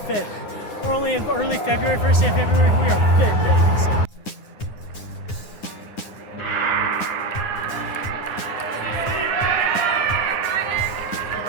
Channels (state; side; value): late; right; 9.7 ms